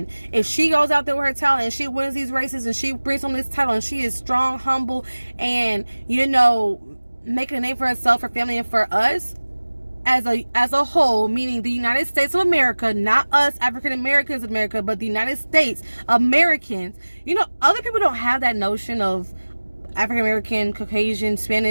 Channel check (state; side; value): inverted; both; correlation -1.00